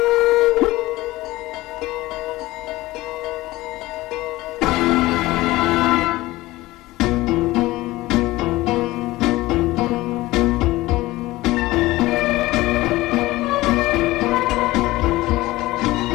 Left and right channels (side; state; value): right; quieter; 18.6 dB